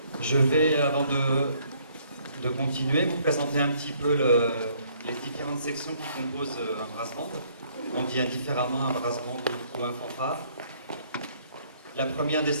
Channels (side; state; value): both; inverted; correlation -0.64